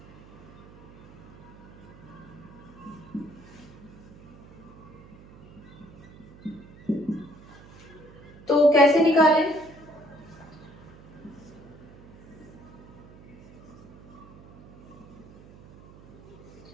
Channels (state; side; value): noise; right; hum, 20 dB below the sound